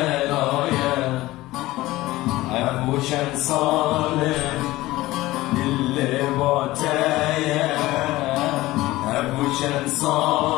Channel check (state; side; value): quieter; right; 17.9 dB